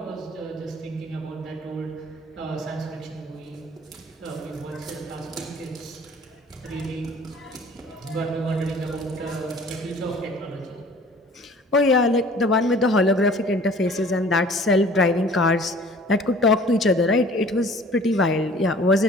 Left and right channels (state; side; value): normal; both; correlation 0.49